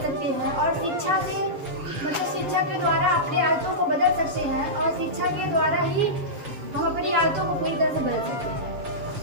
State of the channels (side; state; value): left; late; 7.3 ms